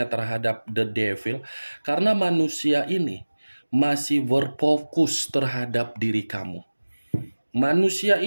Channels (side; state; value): both; inverted; correlation -1.00